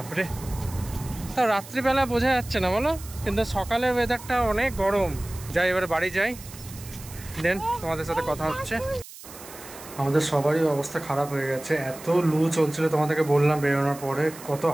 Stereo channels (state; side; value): noise; right; hiss, 16 dB below the sound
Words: তা রাত্রিবেলা বোঝা যাচ্ছে না বলো, কিন্তু সকালের ওয়েদারটা অনেক গরম। যাই এবারে বাড়ি যাই, দেন তোমাদের সাথে কথা হচ্ছে। আমাদের সবারই অবস্থা খারাপ হয়ে গেছে, এত লু চলছিল। তোমাদেরকে বললাম বেরোনোর পরে কত